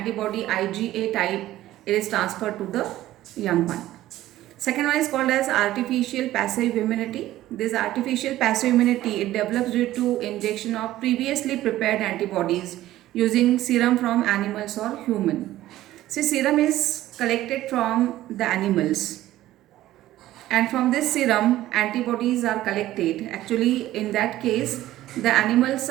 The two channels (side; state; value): left; quieter; 14.7 dB